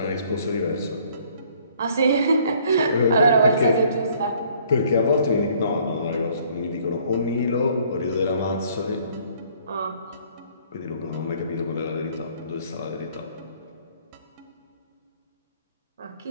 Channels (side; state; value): both; inverted; correlation -0.60